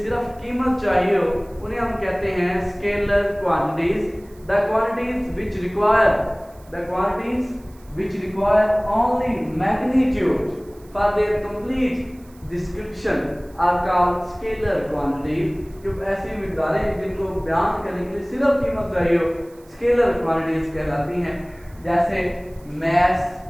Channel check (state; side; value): noise; right; hiss, 28 dB below the sound